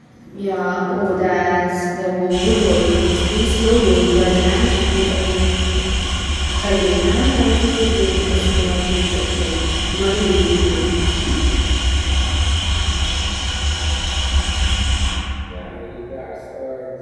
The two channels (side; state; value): both; identical; correlation 1.00